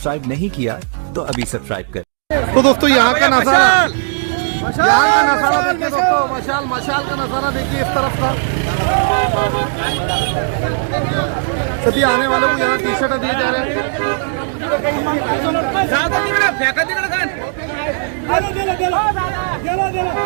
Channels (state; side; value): silent; left; digital silence